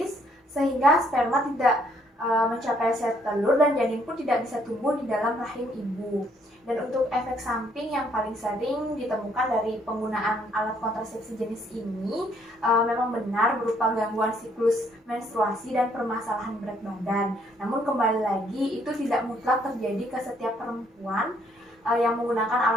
sehingga sperma tidak mencapai sel telur dan janin pun tidak bisa tumbuh di dalam rahim ibu. Dan untuk efek samping yang paling sering ditemukan dari penggunaan alat kontrasepsi jenis ini memang benar berupa gangguan siklus menstruasi dan permasalahan berat badan. Namun kembali lagi itu tidak mutlak terjadi ke setiap perempuan yang menggunakan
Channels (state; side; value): normal; both; correlation 0.67